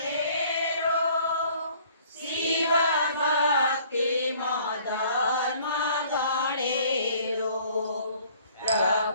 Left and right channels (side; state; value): both; inverted; correlation -0.56